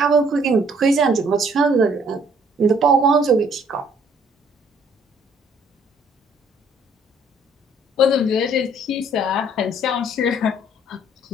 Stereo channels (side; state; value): both; normal; correlation 0.61